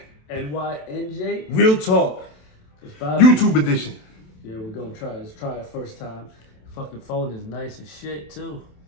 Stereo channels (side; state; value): right; late; 27 ms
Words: NYNJ Real Talk, so YouTube edition. Yeah, we're gonna try. Let's try it first time. Fucking phone is nice as shit too.